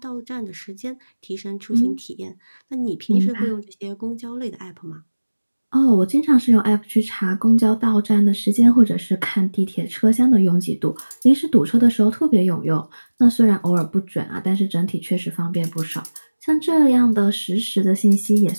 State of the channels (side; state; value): both; inverted; correlation -1.00